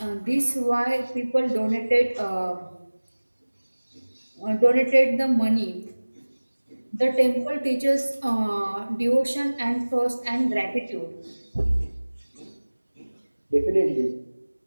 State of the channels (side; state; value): both; inverted; correlation -1.00